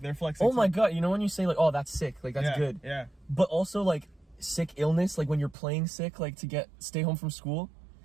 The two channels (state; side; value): drops out; left; at 5.6 s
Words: they're flexing. Oh my too. god! You know when you say like, oh, that's sick. Like that's Yeah, good. Yeah. But also like sick illness, like when you're playing sick, like to stay home from school.